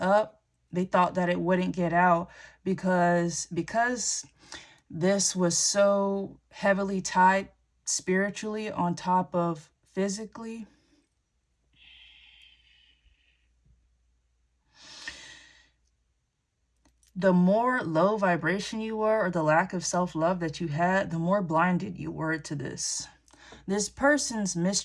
They thought that it wouldn't get out because this was so heavily tied spiritually on top of physically. The more low vibration you were, or the lack of self-love that you had, the more blinded you were to this. This person's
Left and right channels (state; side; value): identical; both; correlation 1.00